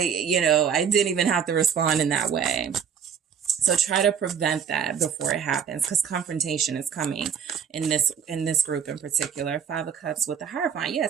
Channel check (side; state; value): left; quieter; 7.5 dB